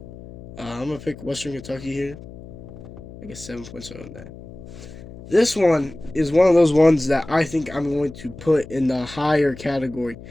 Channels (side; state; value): left; noise; hum, 16 dB below the sound